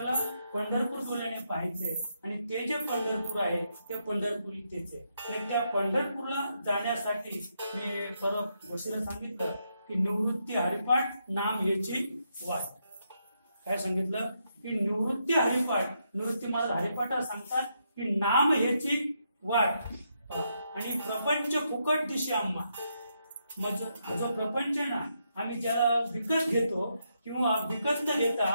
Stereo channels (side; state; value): both; inverted; correlation -0.80